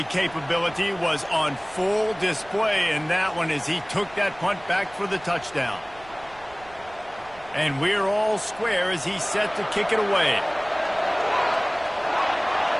capability was on full display in that one as he took that punt back for the touchdown. And we're all square as he's set to kick it away.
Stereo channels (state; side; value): noise; right; rumble, 23 dB below the sound